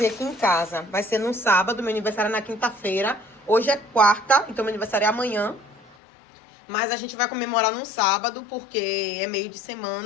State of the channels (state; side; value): drops out; right; at 6.0 s